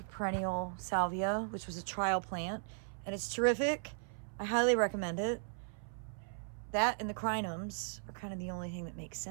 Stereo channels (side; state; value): left; silent; 53 dB below the other